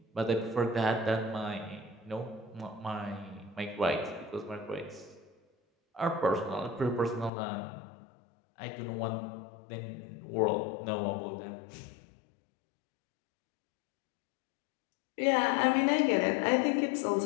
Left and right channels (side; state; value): right; drops out; at 7.3 s